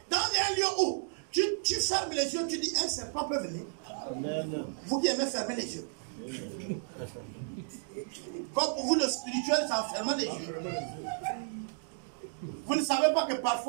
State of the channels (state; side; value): silent; left; digital silence